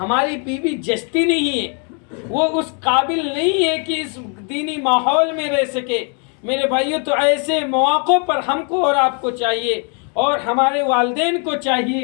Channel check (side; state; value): right; quieter; 39.1 dB